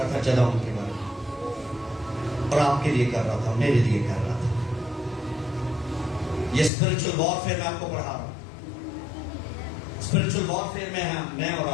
تھا جدعون کے بارے میں، اور آپ کے لیے کر رہا تھا، میرے لیے کر رہا تھا. یہ اسپرچل وارفیئر میں آپ کو پڑھا رہا ہوں. اسپرچل وارفیئر میں اور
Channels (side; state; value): right; drops out; at 6.7 s